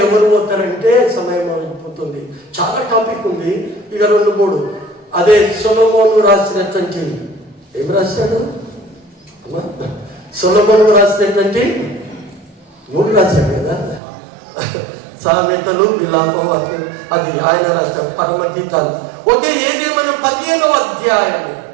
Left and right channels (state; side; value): drops out; left; at 14.0 s